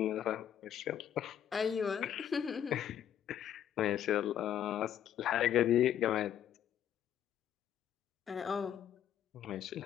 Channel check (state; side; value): quieter; right; 10.0 dB